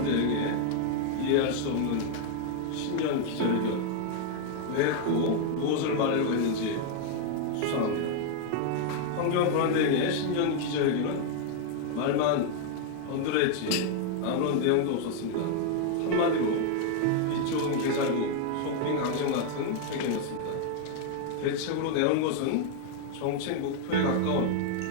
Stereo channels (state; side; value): different; both; correlation 0.00